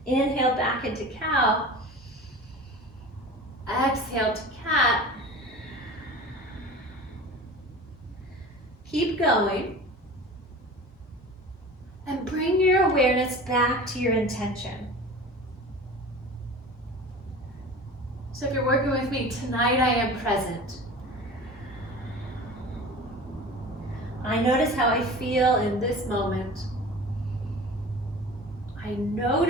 in. Inhale, back into cow. Exhale to cat. Keep going. And bring your awareness back to your intention. So if you're working with me, tonight I am present. I notice how I feel in this moment. I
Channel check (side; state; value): both; normal; correlation 0.37